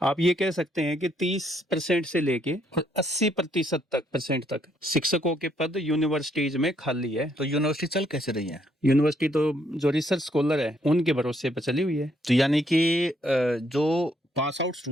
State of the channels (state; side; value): normal; both; correlation 0.71